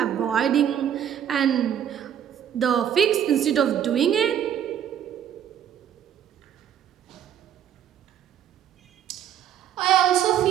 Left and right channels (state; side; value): quieter; left; 9.7 dB